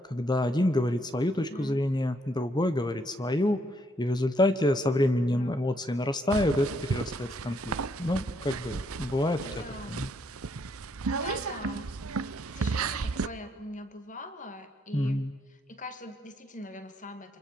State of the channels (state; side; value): normal; both; correlation 0.72